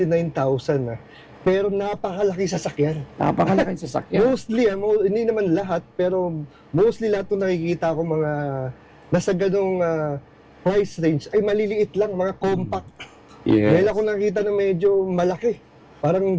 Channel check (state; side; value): identical; both; correlation 1.00